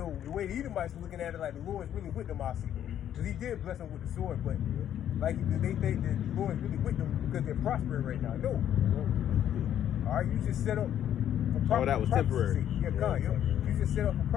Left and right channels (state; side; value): quieter; right; 10.5 dB